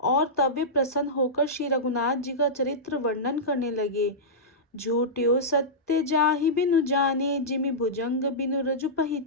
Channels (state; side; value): normal; both; correlation -0.13